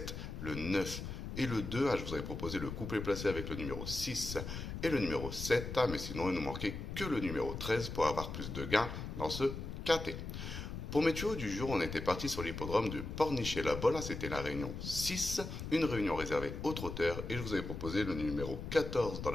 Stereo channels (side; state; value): left; noise; rumble, 7 dB below the sound